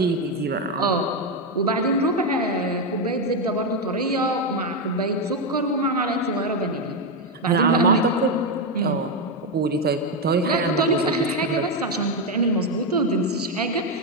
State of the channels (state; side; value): normal; both; correlation 0.06